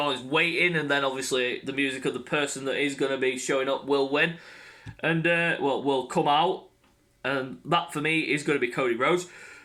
waiting, and then obviously the music of the person that is going to be showing up will win. And, will come out. And that for me is going to be Cody Rhodes.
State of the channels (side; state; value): both; identical; correlation 1.00